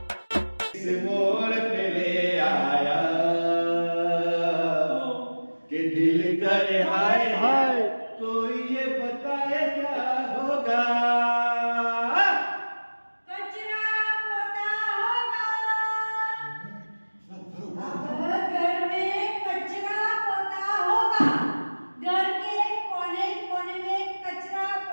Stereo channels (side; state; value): both; inverted; correlation -1.00